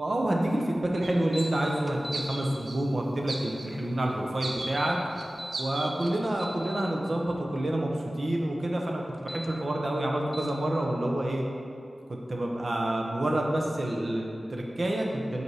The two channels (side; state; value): both; normal; correlation 0.96